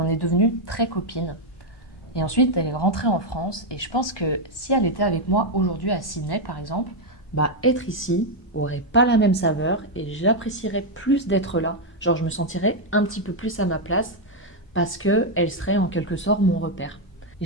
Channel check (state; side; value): normal; both; correlation 0.01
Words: est devenues très copines. Et ensuite, elle est rentrée en France et je pense que si elle était avec moi aujourd'hui à Sydney par exemple, être ici aurait pas la même saveur et j'apprécierais plus d'être là. Genre, je me sentirais un petit peu plus à ma place parce qu'elle serait en quelque sorte mon repère.